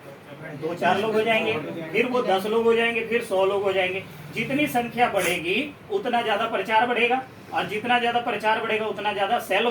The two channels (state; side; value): identical; both; correlation 1.00